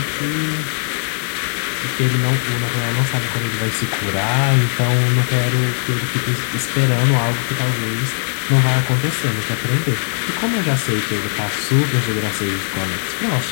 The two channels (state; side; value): silent; right; digital silence